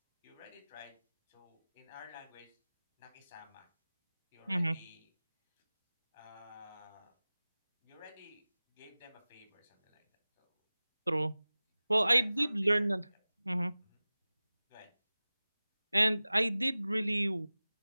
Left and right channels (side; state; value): both; inverted; correlation -0.99